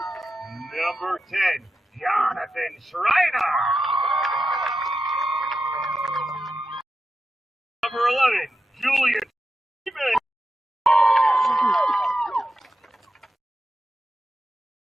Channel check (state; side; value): normal; both; correlation 0.89